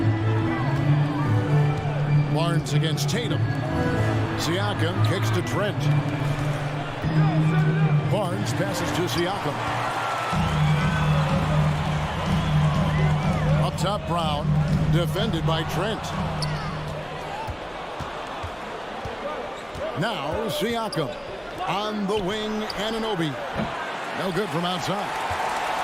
Barnes against Tatum. Siakam kicks to Trent. Barnes passes to Siakam. Up top, Brown. Defended by Trent. Now Siakam. On the wing, Anunoby. No good from outside.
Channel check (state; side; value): identical; both; correlation 1.00